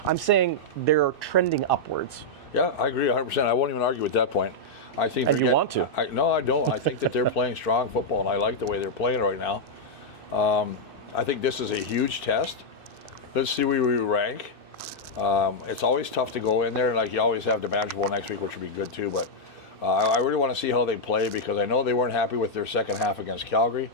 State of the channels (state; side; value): late; right; 2.6 ms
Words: I'm saying they're trending upwards. Yeah, I agree 100%. I won't even argue with that point. I think. And you want to? No, I don't. I think that they're playing strong football, and I like the way they're playing right now. I think this is a huge test. Let's see where we rank. It's always tough to go in there, like you always have the Manager Bowl next week, which would be good too. But I really want to see how they play, because I know they weren't happy with their second half against Calgary.